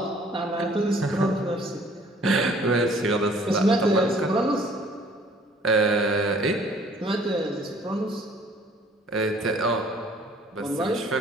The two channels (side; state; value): both; normal; correlation 0.56